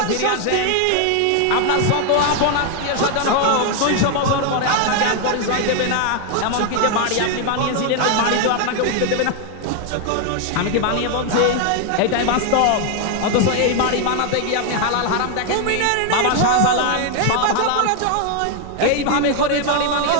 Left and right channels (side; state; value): both; different; correlation 0.01